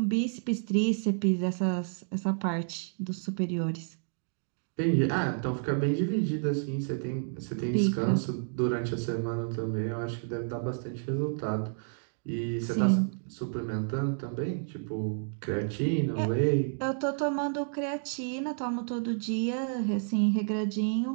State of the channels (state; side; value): silent; left; digital silence